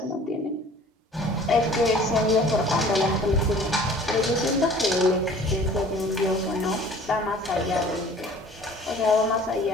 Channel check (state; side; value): normal; both; correlation 0.49